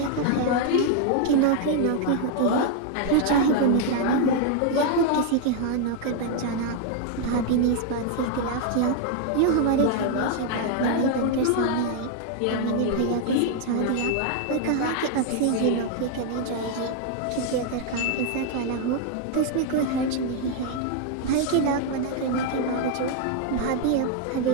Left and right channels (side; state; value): both; different; correlation 0.00